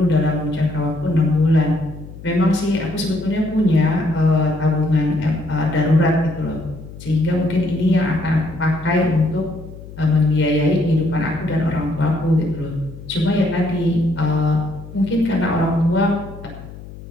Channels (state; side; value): noise; left; hum, 15 dB below the sound